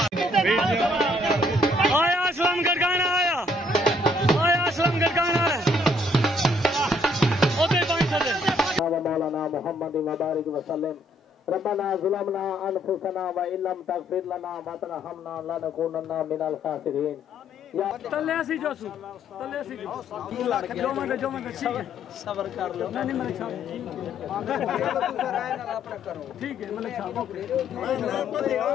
आया असलम गरगाना आया असलम गरगाना मौलाना मोहम्मद मुबारक वसल्लम रब्बना ज़ुलमना अनफुसना व इल्लम तगफिर लना व तरहमना लनकुनन्ना मिनल खासिरीन या तलेसी जोसु तलेसी जो मन ठीक है सब्र कर लो नहीं मलिक साहब ठीक है मलिक साहब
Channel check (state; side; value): normal; both; correlation 0.66